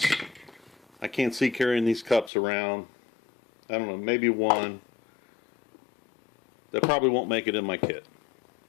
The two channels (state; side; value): drops out; right; at 2.3 s